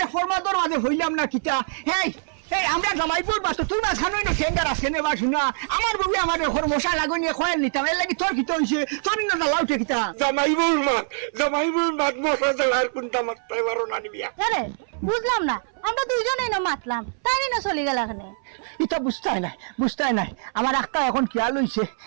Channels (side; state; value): left; silent; 60 dB below the other